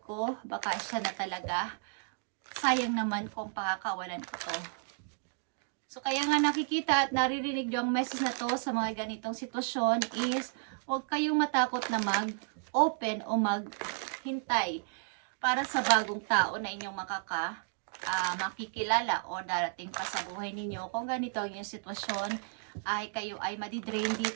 ko, baka siya na talaga. Sayang naman kung pakakawalan ko to. So kaya nga nakikita at naririnig nyo ang message na to sa mga ganitong sitwasyon is huwag kayong matakot na mag-open o maghintay para sa bagong tao na inyong makikilala o darating pa sa buhay ninyo. Kung ganito ang inyong sitwasyon, ay kayo ay madidrain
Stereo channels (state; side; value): silent; left; digital silence